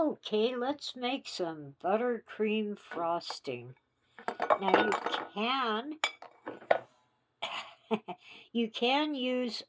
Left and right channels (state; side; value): identical; both; correlation 1.00